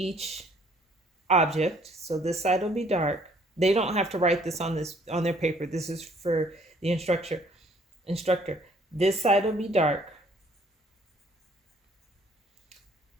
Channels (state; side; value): normal; both; correlation 0.61